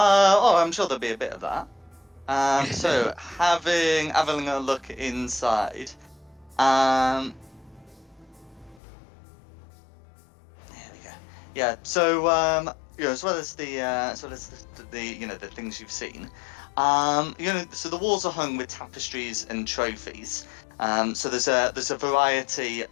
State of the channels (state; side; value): drops out; right; at 8.8 s